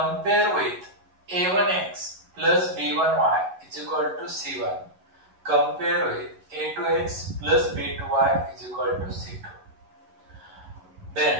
with a1x plus b1y is equal to c1. Compare with a2x plus b2y is equal to c2.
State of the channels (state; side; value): late; left; 11 ms